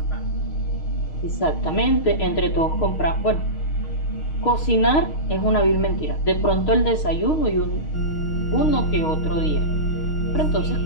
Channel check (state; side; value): late; right; 6.4 ms